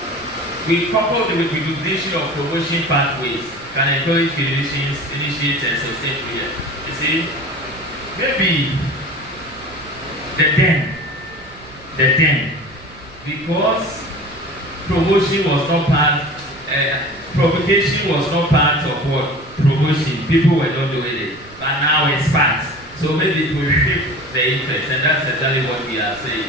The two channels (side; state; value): right; noise; rumble, 23 dB below the sound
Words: we couple the recognition of promotion pathways can encourage clinicians, initiate and sustain prayer. You see, maybe the then, because promotion was not part, provocation was not part of what? Promotion. People were not doing it, but now it's part. So maybe it will shift the interest, and that's exactly what we are